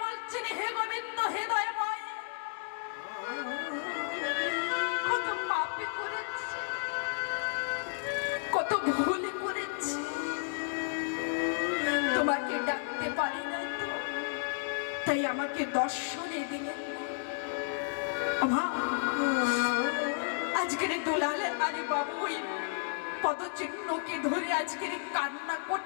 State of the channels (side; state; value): right; silent; digital silence